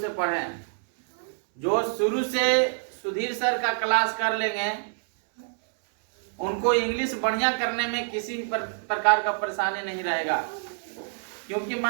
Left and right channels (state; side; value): silent; left; 59 dB below the other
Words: पढ़ें। जो शुरू से सुधीर सर का क्लास कर लेंगे, उनको इंग्लिश बढ़िया करने में किसी प्रकार का परेशानी नहीं रहेगा, क्योंकि